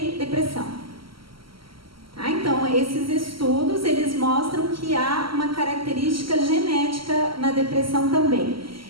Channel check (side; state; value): left; late; 0.74 ms